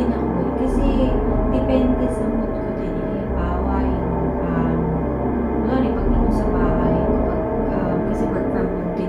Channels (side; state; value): both; identical; correlation 1.00